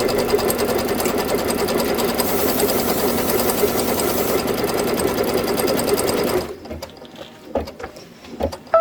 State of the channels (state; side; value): identical; both; correlation 1.00